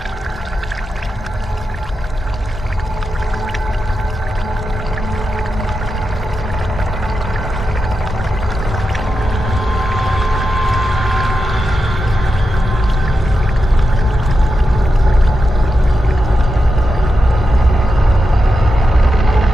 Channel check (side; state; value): both; normal; correlation 0.89